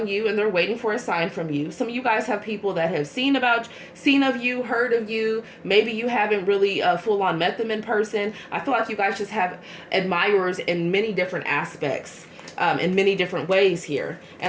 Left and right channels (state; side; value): identical; both; correlation 1.00